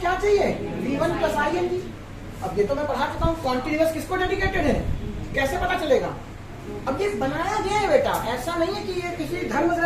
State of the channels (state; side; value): identical; both; correlation 1.00